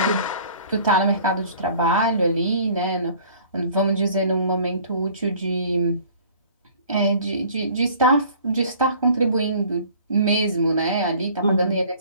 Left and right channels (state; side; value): inverted; both; correlation -0.51